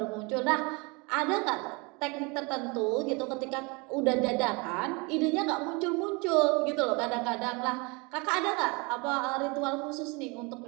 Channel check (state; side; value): quieter; left; 28.7 dB